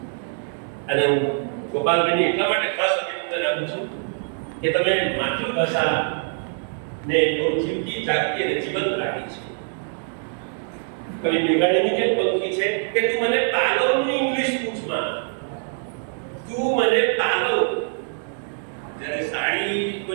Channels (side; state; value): left; silent; 63 dB below the other